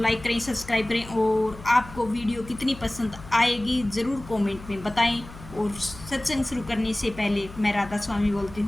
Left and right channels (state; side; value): noise; left; hum, 16 dB below the sound